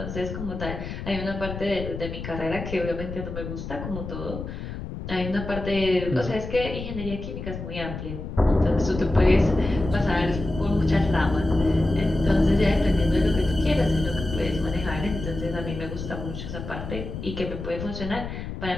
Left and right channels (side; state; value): left; noise; rumble, 8 dB below the sound